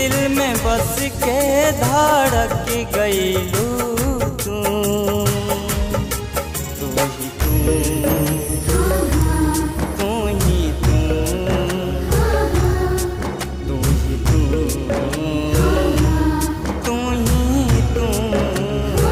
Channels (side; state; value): both; identical; correlation 1.00